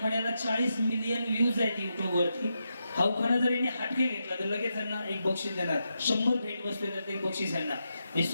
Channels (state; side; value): inverted; both; correlation -0.86